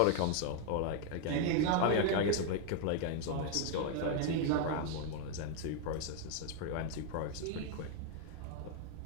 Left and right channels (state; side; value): different; both; correlation 0.00